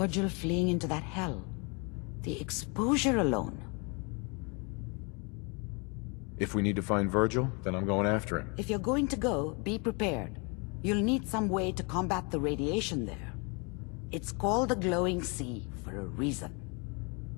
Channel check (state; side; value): quieter; right; 32.3 dB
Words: fleeing into that hell. The exposure alone. If we need to find Virgil, then I'm going after him. If you're going to go, be prepared. You'll need some way to combat the radiation there. It's called the glowing sea for a reason.